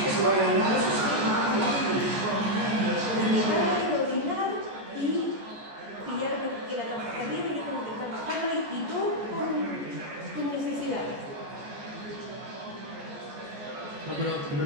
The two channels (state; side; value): late; left; 14 ms